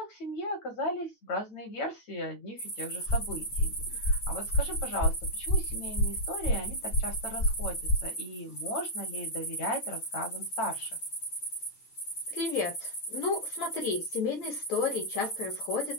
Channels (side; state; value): right; late; 9.0 ms